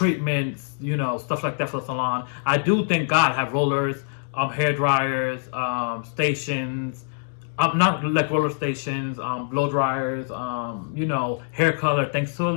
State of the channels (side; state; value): right; silent; digital silence